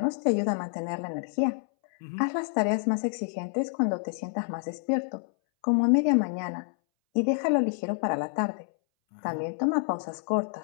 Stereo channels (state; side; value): silent; right; 59 dB below the other